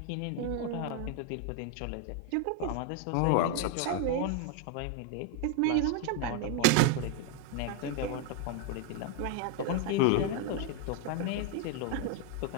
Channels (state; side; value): different; both; correlation 0.01